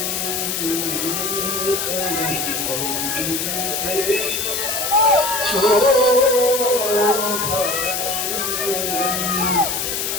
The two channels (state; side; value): noise; left; hiss, 1 dB below the sound